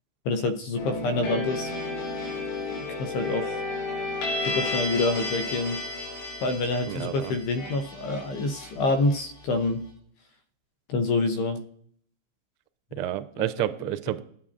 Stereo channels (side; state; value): right; late; 15 ms